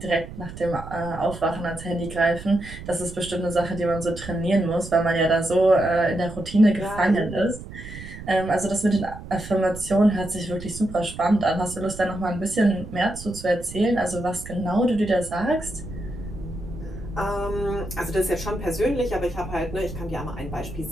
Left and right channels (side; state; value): right; noise; rumble, 12 dB below the sound